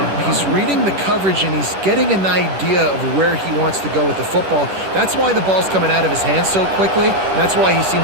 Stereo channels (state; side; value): late; left; 10 ms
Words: He's reading the coverage, and he's getting an idea of where he wants to go with the football. That's why the ball's coming out of his hands so quickly, and that's why he